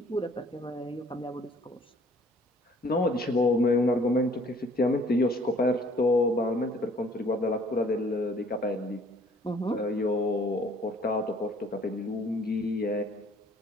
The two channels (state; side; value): normal; both; correlation 0.58